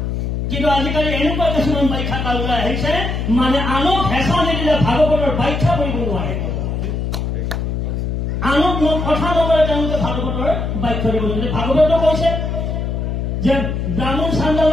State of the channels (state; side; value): noise; left; hum, 2 dB below the sound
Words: কিন্তু আজিকালি এনেকুৱা কিছুমান ব্যাখ্যাকাৰ ওলাই আহিছে মানে আনক হেঁচা নিদিলে ভাগৱতৰ ব্যাখ্যা কৰিব নোৱাৰে, আনক কথা নকৰে তেওঁলোকে ভাগৱতৰ ব্যাখ্যা দিব নোৱাৰে। ভাগৱতে কৈছে যে ব্ৰাহ্মণ